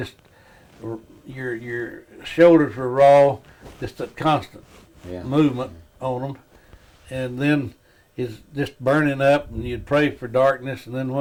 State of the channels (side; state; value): both; identical; correlation 1.00